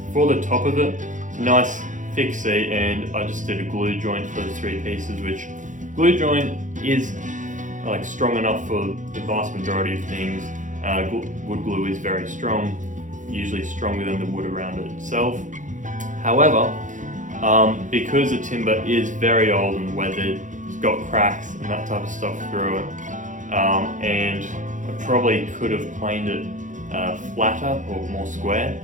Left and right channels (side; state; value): left; late; 0.37 ms